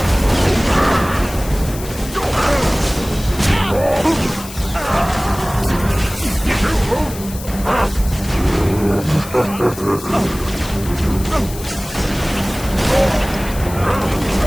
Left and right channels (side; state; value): left; noise; hiss, 14 dB below the sound